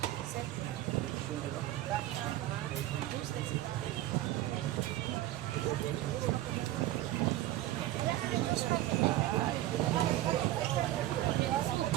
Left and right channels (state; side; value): quieter; left; 14.9 dB